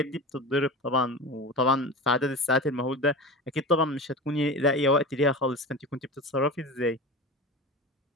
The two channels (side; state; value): both; normal; correlation 0.30